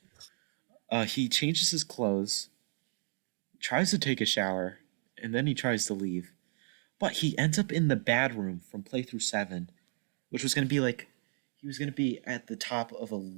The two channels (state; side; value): silent; left; 55 dB below the other